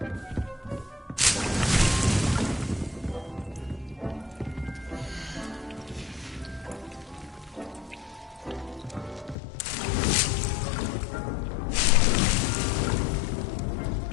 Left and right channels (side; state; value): right; drops out; at 9.3 s